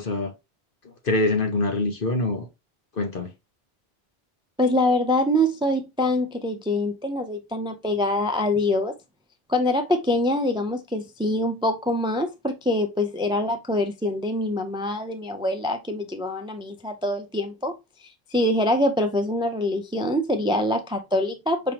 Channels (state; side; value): normal; both; correlation 0.37